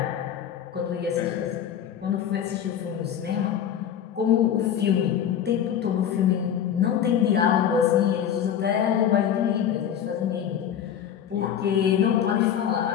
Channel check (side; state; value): right; quieter; 9.2 dB